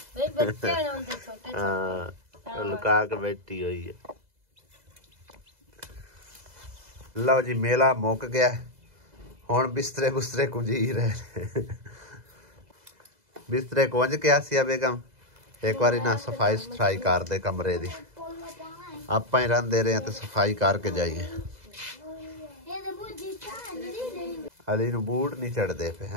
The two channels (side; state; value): left; late; 2.0 ms